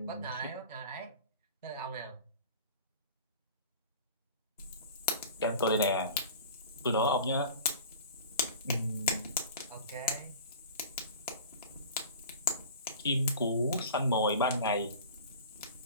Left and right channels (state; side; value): inverted; both; correlation -0.39